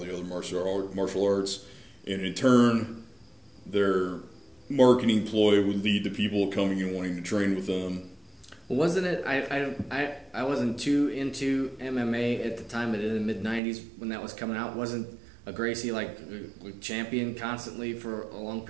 other martial arts. And in turn, their marketing ploy would lead to people coming and wanting to train with them. Well, wasn't it? I wasn't too into MMA at the time, but in the mid-90s when that was coming out, wasn't a Gracie like champion constantly for a long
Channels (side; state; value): left; drops out; at 13.6 s